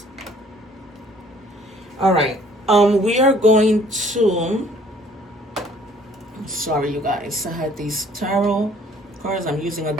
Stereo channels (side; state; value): both; normal; correlation 0.57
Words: All right. We are going to, sorry you guys, I had these tarot cards. I'm using a